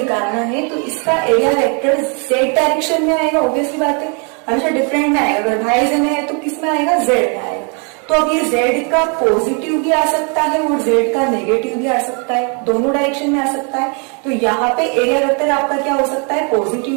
है तो इसका एरिया वेक्टर जेड डायरेक्शन में आएगा, ऑब्वियसली बात है, हमेशा डिफरेंट में आएगा। अगर वाई जे में है तो किस में आएगा, जेड में आएगा। तो अब ये जेड का पॉजिटिव भी आ सकता है और जेड का नेगेटिव भी आ सकता है, दोनों डायरेक्शन में आ सकता है। तो यहाँ पे एरिया वेक्टर आपका क्या हो सकता है, पॉजिटिव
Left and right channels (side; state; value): left; quieter; 36.6 dB